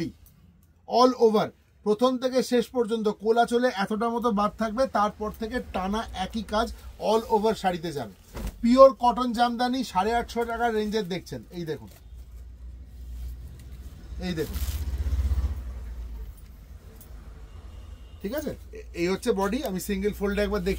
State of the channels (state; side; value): identical; both; correlation 1.00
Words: অল ওভার প্রথম থেকে শেষ পর্যন্ত কোলাচলে এতটা মতো বাদ থাকবে, তারপর থেকে টানা একই কাজ অল ওভার শাড়িতে যাবে। পিওর কটন জামদানি, 850 টাকার রেঞ্জের দেখছেন। এই দেখুন, এই দেখুন, ঠিক আছে। এই হচ্ছে বডি, আমি সিঙ্গেল ফোল্ডে একবার